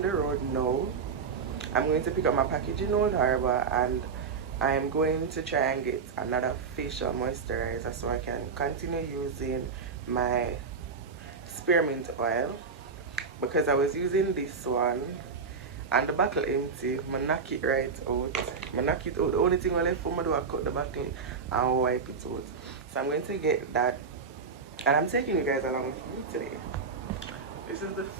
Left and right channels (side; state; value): left; quieter; 5.2 dB